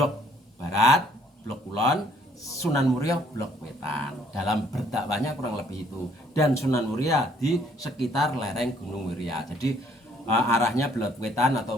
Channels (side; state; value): both; normal; correlation 0.63